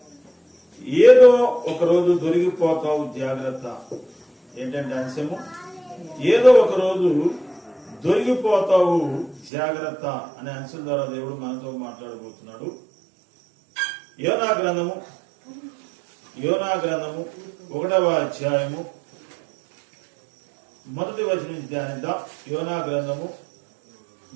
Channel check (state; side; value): drops out; left; at 9.5 s